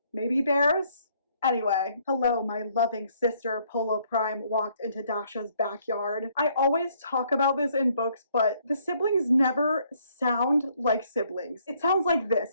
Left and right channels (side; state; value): both; inverted; correlation -0.66